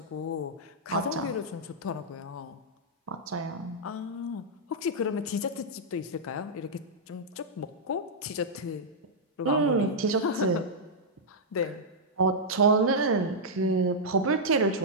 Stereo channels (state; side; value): normal; both; correlation -0.07